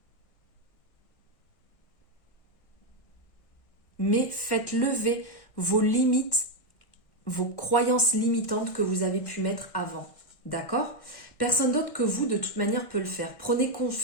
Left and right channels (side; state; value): right; late; 1.6 ms